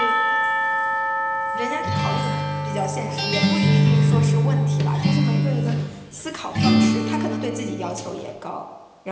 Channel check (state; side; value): identical; both; correlation 1.00